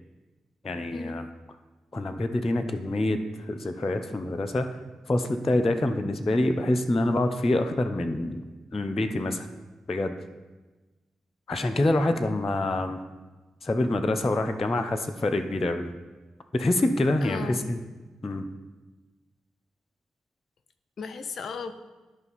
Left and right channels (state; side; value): normal; both; correlation 0.92